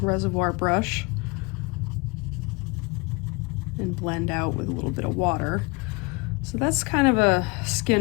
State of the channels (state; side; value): quieter; right; 27.7 dB